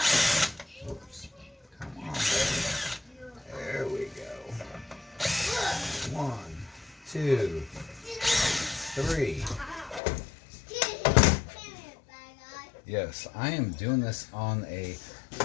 Whoops. Come on, baby. There we go. 1, 2, 3. Yes, I am doing this on a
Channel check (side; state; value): right; drops out; at 10.0 s